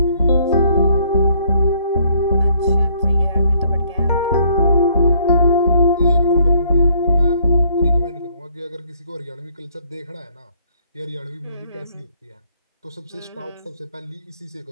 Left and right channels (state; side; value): inverted; both; correlation -0.64